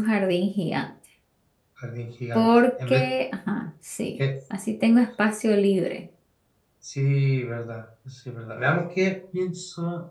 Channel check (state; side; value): identical; both; correlation 1.00